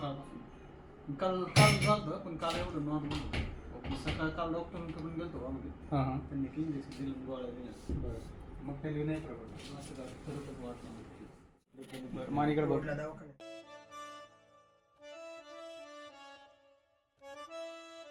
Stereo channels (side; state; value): both; identical; correlation 1.00